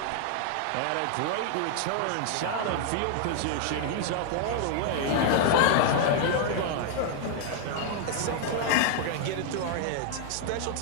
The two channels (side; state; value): both; different; correlation 0.00